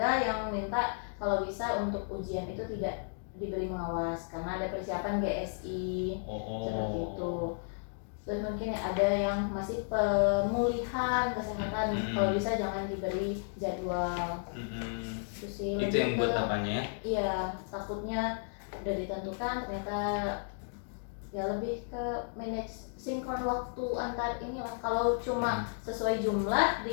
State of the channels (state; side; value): silent; right; digital silence